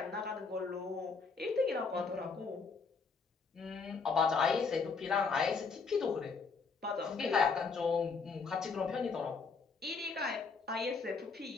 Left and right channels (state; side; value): quieter; right; 4.9 dB